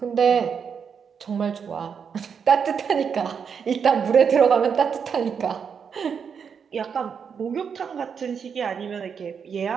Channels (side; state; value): left; quieter; 6.7 dB